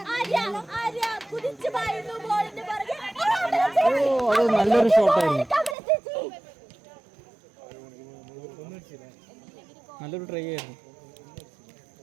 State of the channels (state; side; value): drops out; left; at 5.8 s